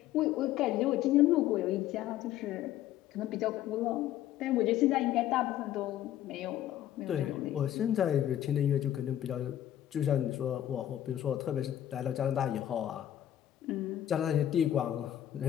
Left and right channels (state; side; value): quieter; right; 12.0 dB